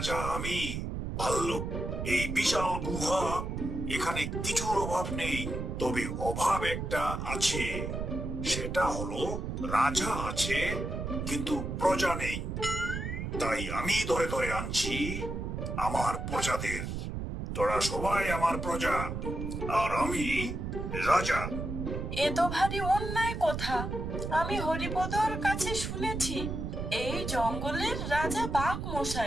আমি। ভাল্লুক, এই বিশাল গুহা, এখানে কিছুর অভাব নেই। তবে অভাব একটা আছে, সেটা হলো রাজা আছে কিন্তু প্রজা নেই। তাই আমি ধরে ধরে আনছি আমার প্রজাদের। তোরা সবাই আমার প্রজা, আর আমি রাজা। এ তো ভারী অন্যায় কথা। আমি হরিপদর কাছে শুনেছি এই জঙ্গলের রাজা বাঘ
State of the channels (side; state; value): right; noise; rumble, 4 dB below the sound